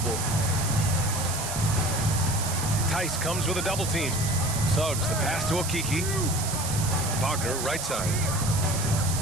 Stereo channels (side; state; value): right; noise; hiss, 4 dB below the sound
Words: Tice comes with a double team. Suggs, the pass to Okiki. Wagner, right side.